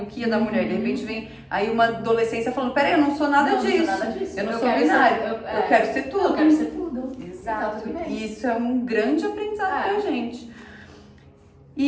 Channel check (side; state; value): both; identical; correlation 1.00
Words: o que é da mulher. De repente vem aí uma adolescência falando, peraí, eu não sou nada disso. Não sou nada disso. Eu não sou binário. Eu quero ser tudo. Eu quero ser tudo. Exato. E isso é um grande aprendizado pra gente.